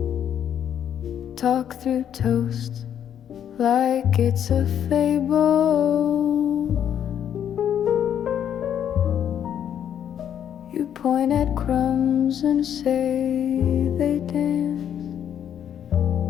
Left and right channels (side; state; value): right; quieter; 9.4 dB